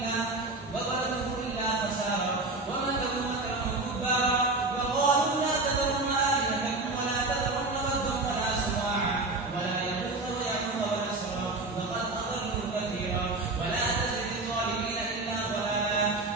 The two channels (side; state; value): left; quieter; 3.2 dB